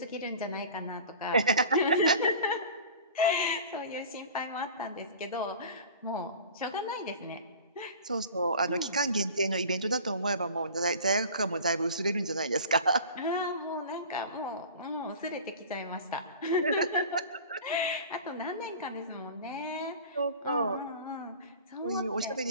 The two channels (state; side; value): inverted; both; correlation -0.40